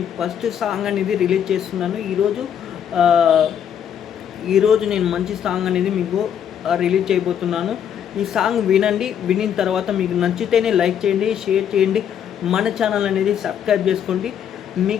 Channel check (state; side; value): quieter; right; 8.9 dB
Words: ఫస్ట్ సాంగ్ అనేది రిలీజ్ చేస్తున్నాను. ఈరోజు నేను మంచి సాంగ్ అనేది మీకు రిలీజ్ చేయబోతున్నాను. ఈ సాంగ్ వినండి. వినిన తర్వాత మీకు నచ్చితేనే లైక్ చేయండి, షేర్ చేయండి, మన ఛానల్ అనేది సబ్స్క్రైబ్ చేసుకోండి.